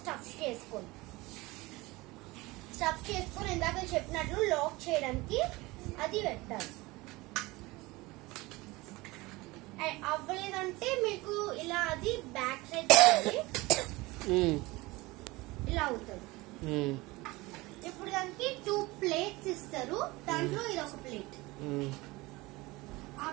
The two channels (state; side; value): quieter; left; 21.7 dB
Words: స్టఫ్ చేసుకోండి. స్టఫ్ చేసుకొని ఇందాక చెప్పినట్లు లాక్ చేయడానికి అది పెట్టాలి. అవ్వలేదంటే మీకు ఇలా అది బ్యాక్ సైడ్ ఇలా అవుతుంది. ఇప్పుడు దానికి 2 ప్లేట్స్ ఇస్తారు, దాంట్లో ఇది ఒక ప్లేట్. ఆ